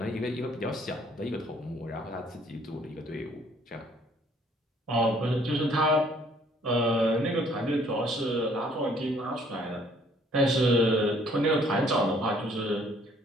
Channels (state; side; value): normal; both; correlation 0.61